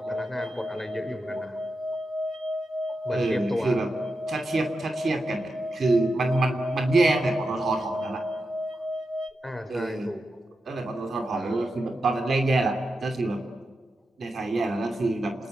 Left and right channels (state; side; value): normal; both; correlation 0.88